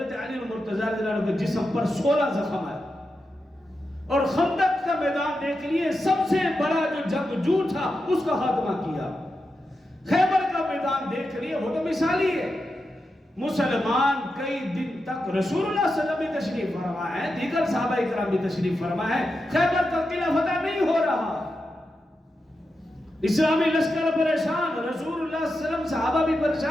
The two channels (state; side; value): normal; both; correlation 0.88